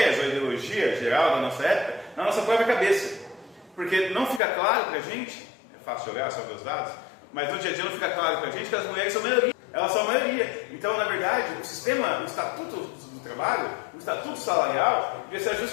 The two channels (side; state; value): right; drops out; at 4.4 s